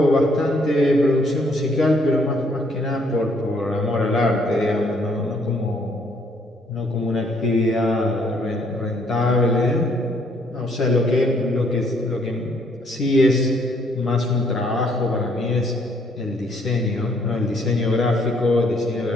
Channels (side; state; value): both; normal; correlation 0.67